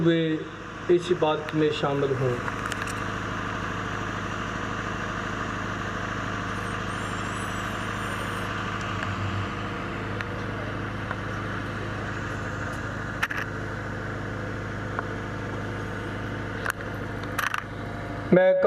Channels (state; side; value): identical; both; correlation 1.00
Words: इसी बात में शामिल हों। मैं